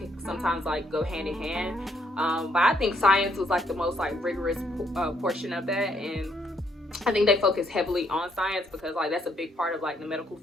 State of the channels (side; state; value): both; normal; correlation 0.71